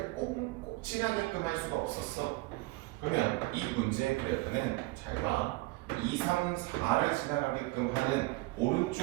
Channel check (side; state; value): left; quieter; 21.6 dB